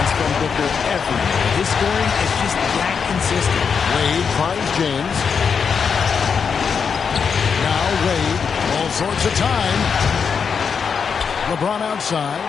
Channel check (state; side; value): quieter; right; 6.3 dB